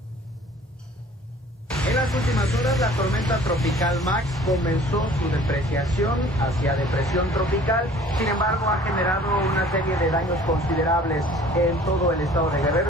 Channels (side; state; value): both; normal; correlation 0.50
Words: En las últimas horas, la tormenta tropical Max comenzó su depreciación hacia depresión tropical. Sin embargo, ha generado una serie de daños considerables en todo el estado de